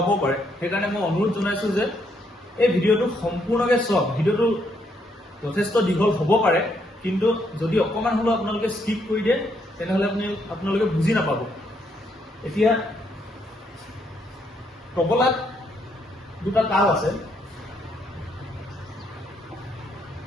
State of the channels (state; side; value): normal; both; correlation 0.74